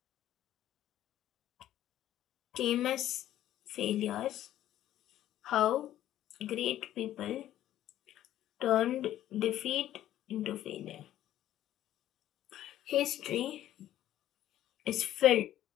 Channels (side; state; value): right; quieter; 12.7 dB